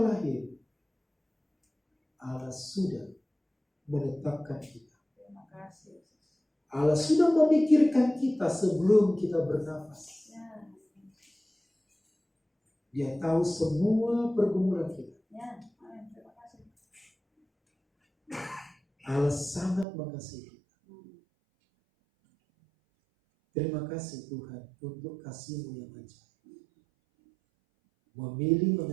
Allah sudah menetapkan kita. Terima kasih. Allah sudah memikirkan kita sebelum kita bernafas. Ya. Dia tahu semua pergumulan kita. Ya. Amin. Terima kasih. Allah sangat mengasihi kita. Terima kasih Tuhan untuk kasih-Mu yang ajaib. Memilih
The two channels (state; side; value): drops out; left; at 19.9 s